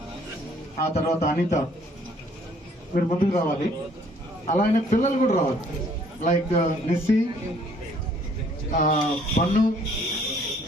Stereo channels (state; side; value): normal; both; correlation 0.61